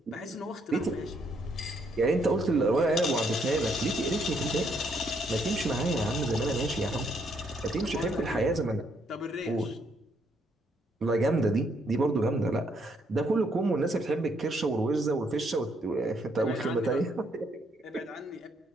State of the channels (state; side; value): normal; both; correlation 0.72